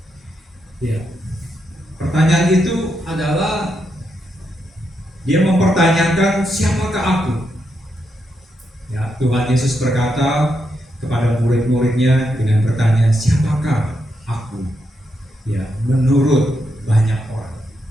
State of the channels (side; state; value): both; normal; correlation 0.82